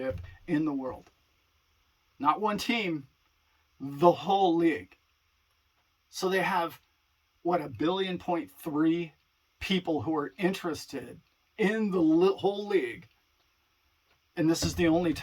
in the world. Not one team, the whole league. So they have, 1.3 billion people who are interested in the whole league. And this is the only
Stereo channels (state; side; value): identical; both; correlation 1.00